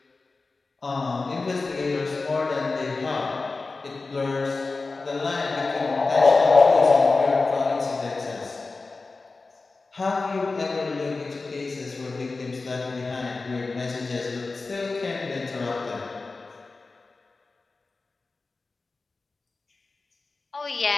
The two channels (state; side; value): quieter; right; 3.8 dB